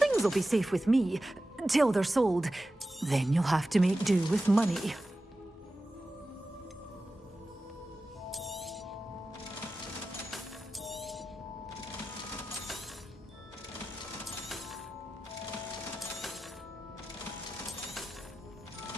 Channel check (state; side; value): normal; both; correlation 0.93